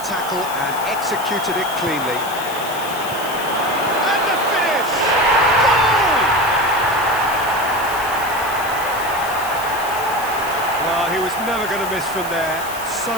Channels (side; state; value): left; noise; hiss, 12 dB below the sound